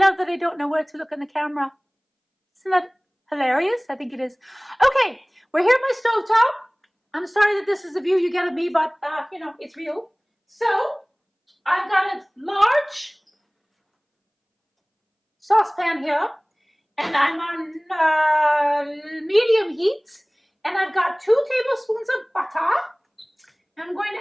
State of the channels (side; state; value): both; identical; correlation 1.00